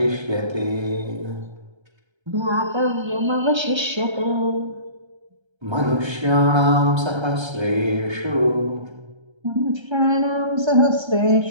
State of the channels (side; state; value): left; late; 1.3 ms